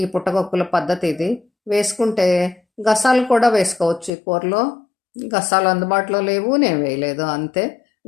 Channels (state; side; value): drops out; right; at 4.1 s